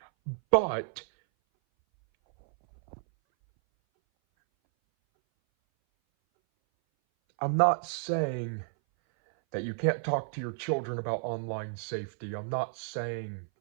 But I'm not saying that you can't talk to your children about online safety. I'm not saying,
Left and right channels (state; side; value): silent; left; 57 dB below the other